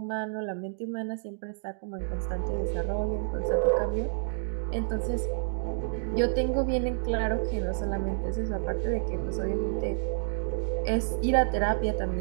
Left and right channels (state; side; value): silent; left; digital silence